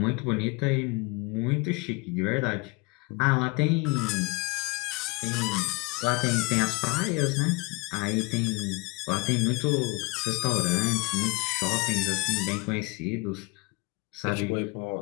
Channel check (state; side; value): quieter; right; 26.2 dB